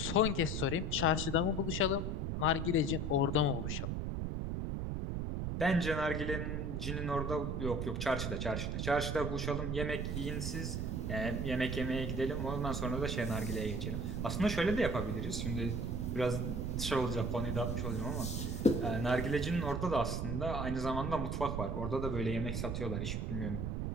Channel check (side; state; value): right; noise; rumble, 1 dB below the sound